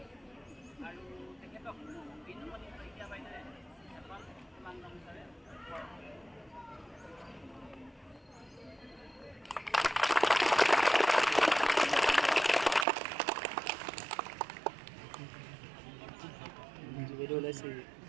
আৰু তেখেতক বিনুমণি শইকীয়া বাইদেৱে এখন কিমান গামোচাৰে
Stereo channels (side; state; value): left; drops out; at 12.9 s